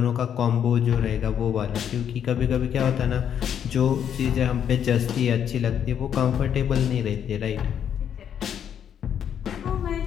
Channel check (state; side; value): quieter; right; 8.9 dB